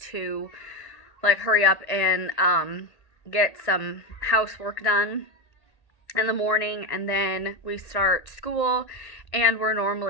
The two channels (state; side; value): late; right; 1.8 ms